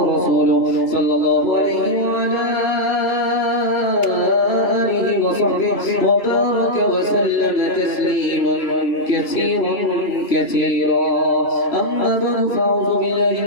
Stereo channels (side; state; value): right; late; 3.0 ms